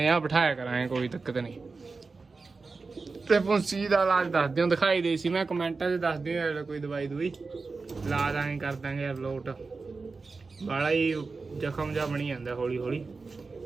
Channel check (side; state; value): left; quieter; 4.2 dB